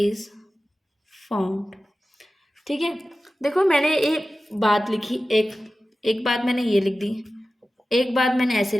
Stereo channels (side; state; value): both; normal; correlation 0.95